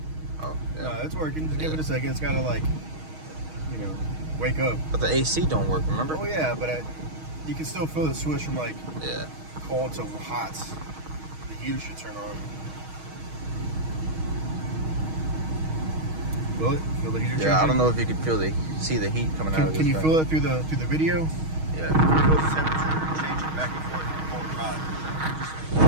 Oh, yeah. No, it's working. Just give it a second. It's gotta like, you know, wake up. But the AC don't work. Remember? Oh yeah, but you can still feel the switch from like cold to hot. The heater should turn on. Feel it? Feel the heater changing? Yeah, I don't know if you can see the heat coming out of this. Can you thing. feel it through the video? Yeah. Feel the temperature changing back and forth from cold to hot.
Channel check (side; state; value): left; late; 6.4 ms